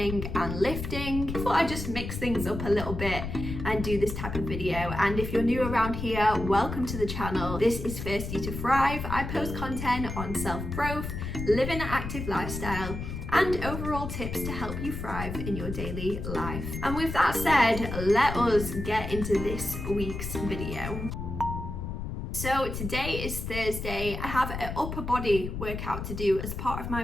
and lifting. I thought I'd just mix things up a little bit and do this type of video. And if you're new around here, welcome to the channel. This is Thirsty to Thrive. I post content on self-growth, living an active lifestyle, and overall tips to help you thrive in your daily life. And with that said, let us get into this week's video. So today is Thursday. I have an upper body workout to do as part of my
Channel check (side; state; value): left; noise; rumble, 6 dB below the sound